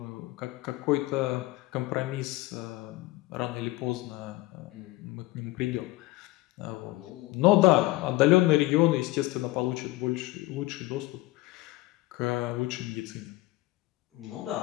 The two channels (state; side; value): quieter; right; 19.5 dB